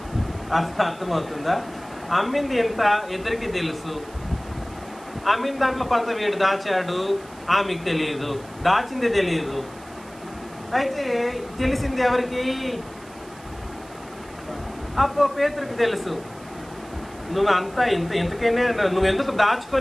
అర్థమవుతుందా? అమ్మింది ఎంత ఇద్దరికి తెలుసు. అమ్మిన దాంట్లో కొంత వీడు దాచాడు, ఆమెకు తెలియదు. దాచింది తెలియదు. అయితే తెలిసింది ఎవరికి? అప్పో పేతురికి తెలుసు. నువ్వు అంతా ఇంతకైనా నువ్వెందుకు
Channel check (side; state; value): right; noise; hiss, 23 dB below the sound